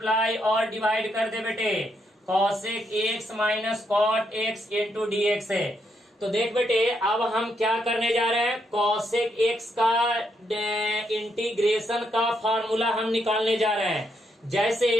और डिवाइड कर दे बेटे, cosec x minus cot x into d x है। तो देख बेटे, अब हम क्या करने जा रहे हैं, cosec x का इंटीग्रेशन का फॉर्मूला हम निकालने जा रहे हैं। जैसे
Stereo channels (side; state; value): both; normal; correlation 0.78